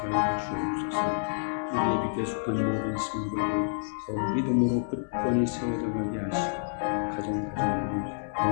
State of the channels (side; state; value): right; silent; 59 dB below the other